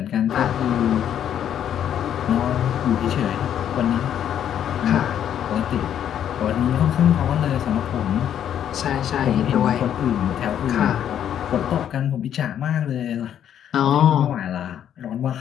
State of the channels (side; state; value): right; quieter; 9.8 dB